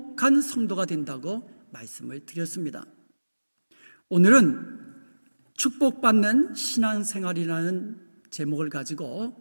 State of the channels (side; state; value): both; inverted; correlation -1.00